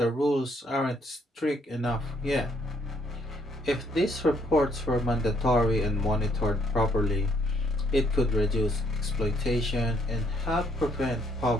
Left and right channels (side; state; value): both; normal; correlation 0.69